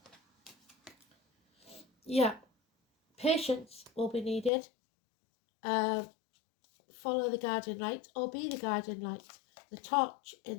Yeah, patience will be needed. Follow the guardian light or be the guardian light, the torch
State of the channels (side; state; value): right; drops out; at 4.5 s